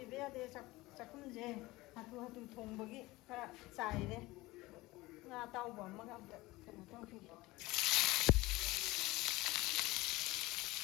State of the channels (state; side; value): quieter; right; 20.2 dB